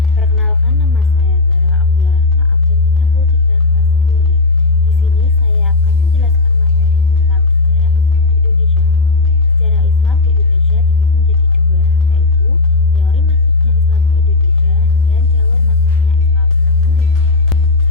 Perkenalkan, nama saya Zara Abdul Rahma, absen 33 kelas 10I. Di sini saya akan menjelaskan materi tentang sejarah Islam di Indonesia. Sejarah Islam di Indonesia dibagi menjadi dua, yaitu teori masuknya Islam ke Indonesia dan jalur masuknya Islam ke Indonesia.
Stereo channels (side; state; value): right; quieter; 3.4 dB